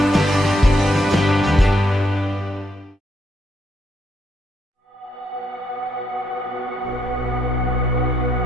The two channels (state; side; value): normal; both; correlation 0.75